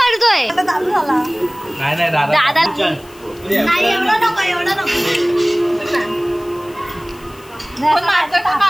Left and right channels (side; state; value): left; noise; hiss, 24 dB below the sound